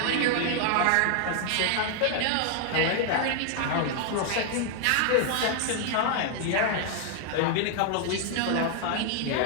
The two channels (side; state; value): both; different; correlation 0.00